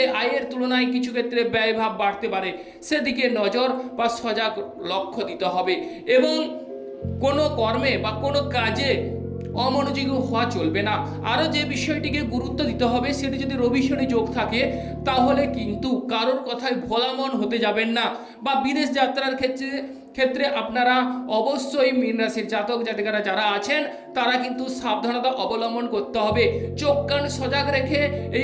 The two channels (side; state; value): both; identical; correlation 1.00